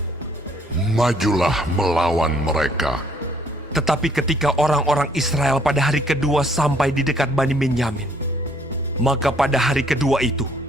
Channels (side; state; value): both; normal; correlation 0.64